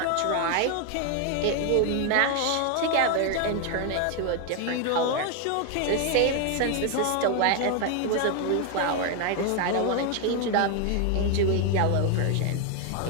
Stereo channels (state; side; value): different; both; correlation 0.01